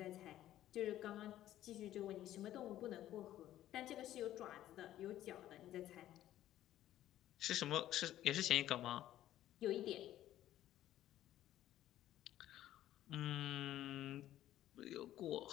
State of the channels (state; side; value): quieter; right; 13.1 dB